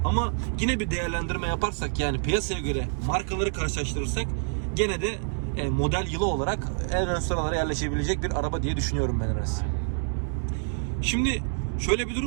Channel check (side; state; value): left; silent; digital silence